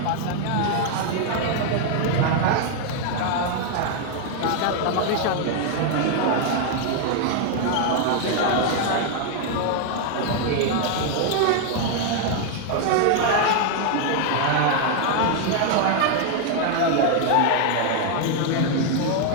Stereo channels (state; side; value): different; both; correlation 0.00